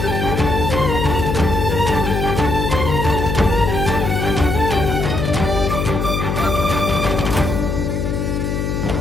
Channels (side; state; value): left; noise; hum, 1 dB below the sound